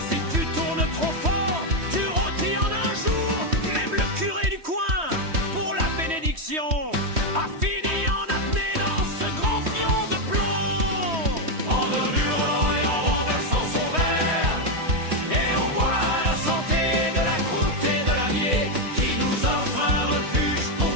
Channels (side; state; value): left; late; 3.1 ms